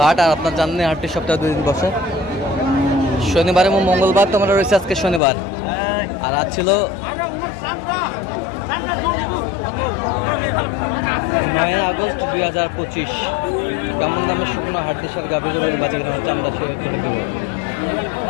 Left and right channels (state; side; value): drops out; right; at 5.2 s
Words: হাট। আর আপনার জানেন হাটটি সপ্তাহে 2 দিন বসে, শনিবার এবং মঙ্গলবার। তো আমরা রয়েছে আজকে শনিবার, আর আজ ছিল 9 আগস্ট 2025। কেমন দামের শুকনো হাড্ডিসার গাভী গরু বাচ্চা কেনা হচ্ছে আমরা সেই উত্তরে দেব।